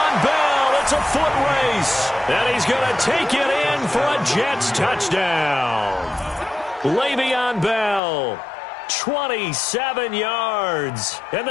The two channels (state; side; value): drops out; right; at 8.0 s